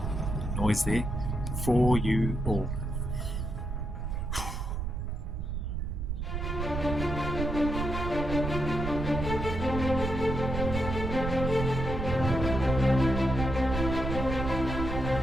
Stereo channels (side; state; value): right; noise; rumble, 3 dB below the sound